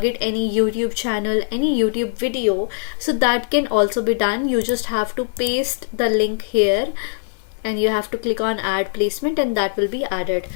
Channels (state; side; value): silent; right; digital silence